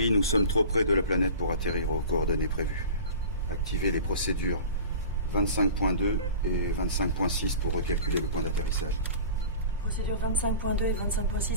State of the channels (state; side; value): inverted; both; correlation -0.37